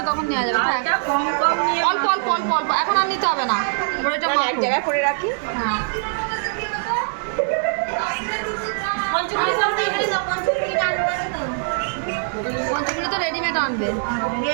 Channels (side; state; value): left; silent; digital silence